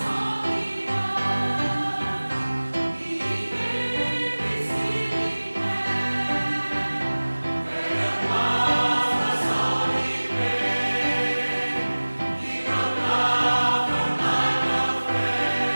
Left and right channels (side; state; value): both; inverted; correlation -1.00